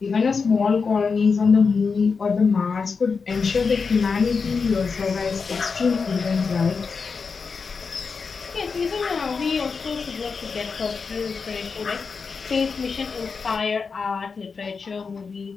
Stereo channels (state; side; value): quieter; right; 5.1 dB